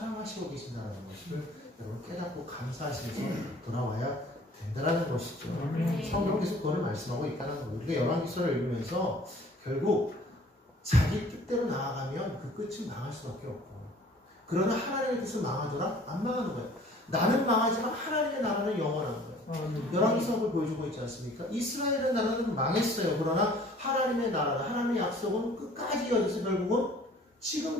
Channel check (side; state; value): both; normal; correlation 0.52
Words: 계신다는 것을 여러분 깨닫고 감사하시면서 돌아와야 된다는 것이죠. 성경께서 그걸 말씀하고 있다는 거예요. 우리가 열왕기서를 읽으면서 결국 자기 뜻대로 나아가면 그 끝은 망할 수밖에 없고, 그러나 하나님의 뜻은 망하더라? 안 망하는 거예요. 나는 망하지만 하나님의 나라는 영원한 거예요. 열왕기서를 보여주고 있지 않습니까? 이스라엘의 나라는 망했어요. 그러나 하나님의 나라, 하나님의 약속은 끝까지 이어져서 결국은